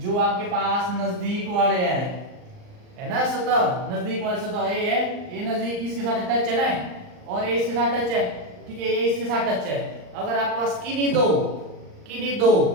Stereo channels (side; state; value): left; late; 39 ms